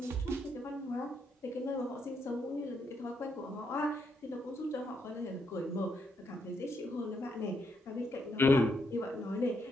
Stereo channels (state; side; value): normal; both; correlation 0.77